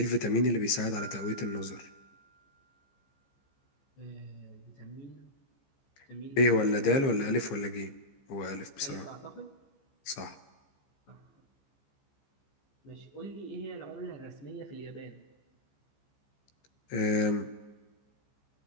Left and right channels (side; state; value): right; late; 15 ms